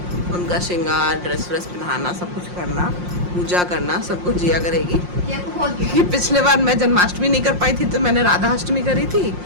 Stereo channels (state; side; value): late; left; 5.6 ms